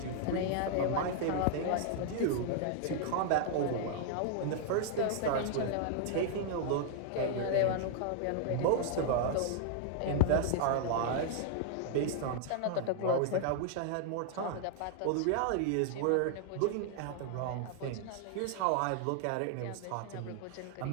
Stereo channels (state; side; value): different; both; correlation -0.01